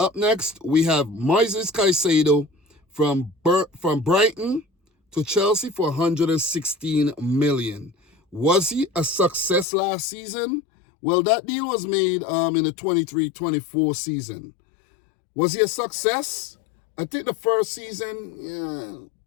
next, we have Moises Caicedo from Brighton to Chelsea for 116 million. Was he a success last season? Well, that deal was made in the 23-24 season. Was he a success? I think the first season, yeah,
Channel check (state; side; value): drops out; right; at 9.7 s